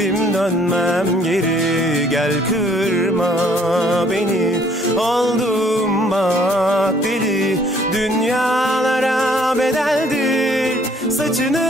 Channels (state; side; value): normal; both; correlation 0.61